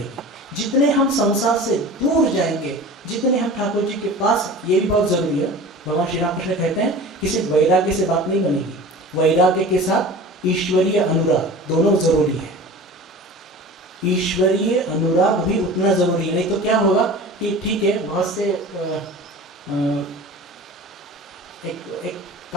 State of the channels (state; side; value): normal; both; correlation 0.37